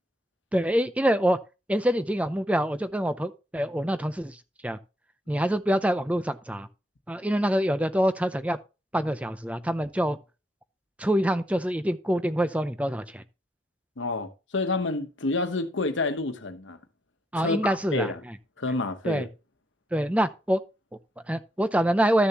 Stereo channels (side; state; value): both; normal; correlation 0.78